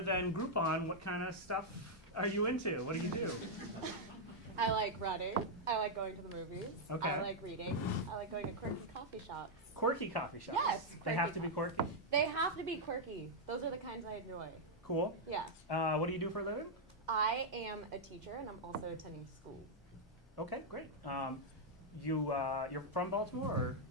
than Groupon, what kind of stuff are you into? What do you do? I like running. I like going to the movies. Okay. I like reading. I like going to quirky coffee shops. Quirky coffee shops? Yes. They have to be quirky? They have to be quirky. Those are the kinds I enjoy. Cool. Yeah. What do you do for a living? I am a teacher, and I'm also attending school. Okay, great. You're from Baltimore, or?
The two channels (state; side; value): normal; both; correlation -0.03